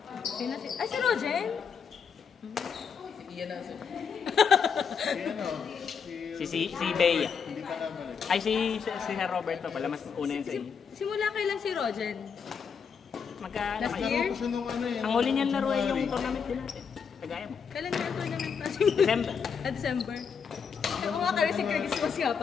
Sino si... Ay, si Rogen? Si Ian ang sunod. Si ano, Si Bea. hindi ka naman eh. Ay, si Sir Robert pa pala. Mas una yun sa inyo. Simula kailan si Rogen? Magka... Last naman- year? Laro ko siya nung ano eh. Ang huli niyan laro ay yung tournament din natin. Kagaya mo. Kailan na yung tournament pa? December. December. Oo nga, kasi si Christmas nga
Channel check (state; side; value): quieter; right; 6.5 dB